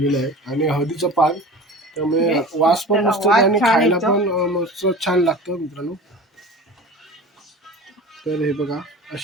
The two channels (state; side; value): normal; both; correlation 0.36